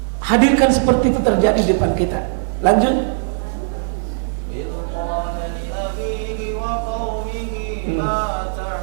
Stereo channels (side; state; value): left; silent; digital silence